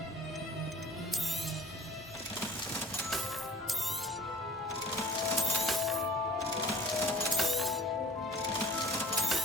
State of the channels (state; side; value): normal; both; correlation 0.49